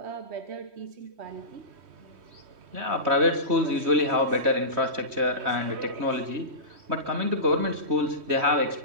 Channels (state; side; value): late; left; 3.1 ms